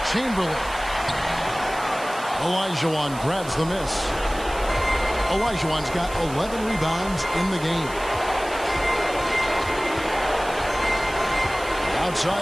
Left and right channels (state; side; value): noise; right; hiss, 16 dB below the sound